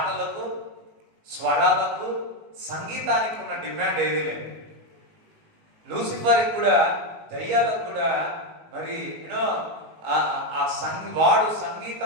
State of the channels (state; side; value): late; left; 19 ms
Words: స్వరాలకు, సంగీతానికి ఉన్న డిమాండ్ ఏది లేదు. లూసిఫర్కి కూడా, దయ్యాలకు కూడా మరి యూనో వాడు